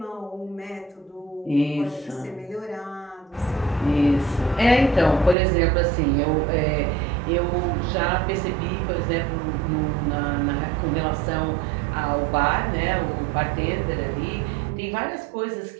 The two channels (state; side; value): drops out; left; at 5.4 s